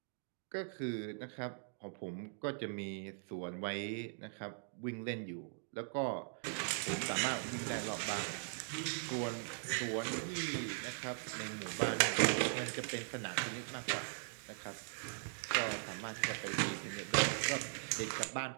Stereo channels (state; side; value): silent; left; digital silence